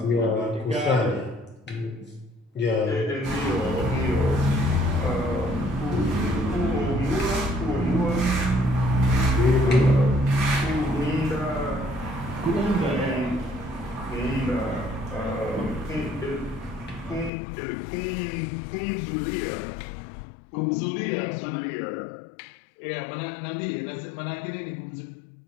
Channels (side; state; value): right; drops out; at 17.3 s